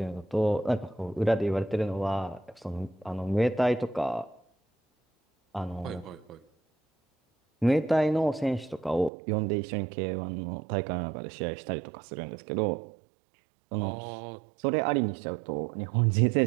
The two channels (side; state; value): left; drops out; at 9.1 s